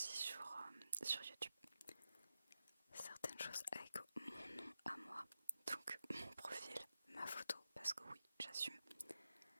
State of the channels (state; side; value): inverted; both; correlation -0.90